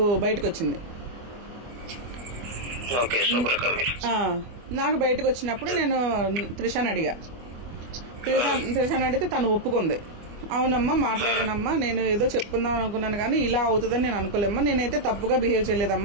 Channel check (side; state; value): left; late; 24 ms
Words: బయటకు వచ్చింది. నాకు బయటకు వచ్చినప్పుడు నేను త్రిషాని అడిగా. త్రిషాని అడిగితే తను ఒప్పుకుంది. అవునమ్మా మాట్లాడానమ్మా, నేను ఏదో చెప్పుకుందాం అనుకున్నాను కానీ ఇలా అవుతుందని నేను అనుకోలేమ్మా, నేనైతే తప్పుగా బిహేవ్